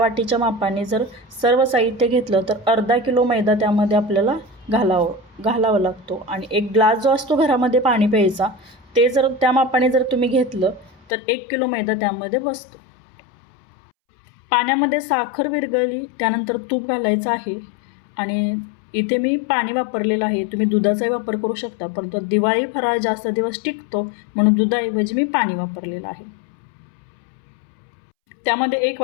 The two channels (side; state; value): right; drops out; at 11.0 s